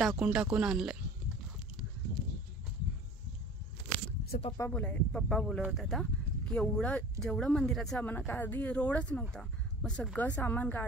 आणलं आहे. असं पप्पा बोलत होता आता की जेवढं मंदिराचं सामान, का आधी रोडच नव्हता, मग सगळं सामान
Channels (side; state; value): both; normal; correlation 0.43